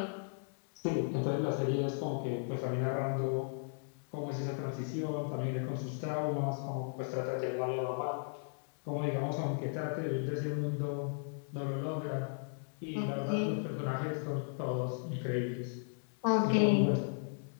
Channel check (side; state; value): right; silent; digital silence